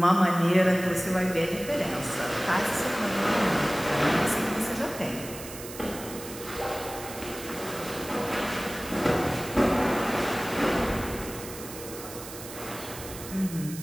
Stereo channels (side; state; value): right; noise; hiss, 12 dB below the sound